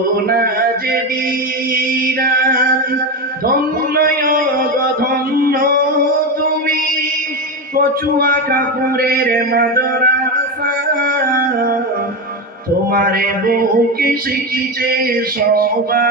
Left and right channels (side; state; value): both; normal; correlation 0.16